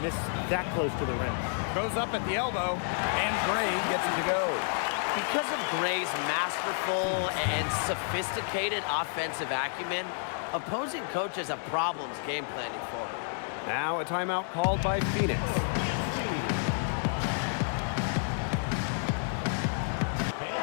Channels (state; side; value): silent; right; 58 dB below the other